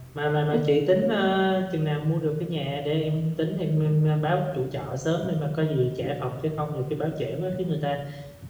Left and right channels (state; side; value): identical; both; correlation 1.00